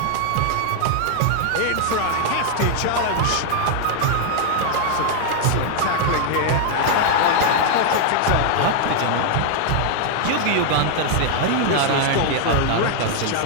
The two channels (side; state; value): both; different; correlation 0.00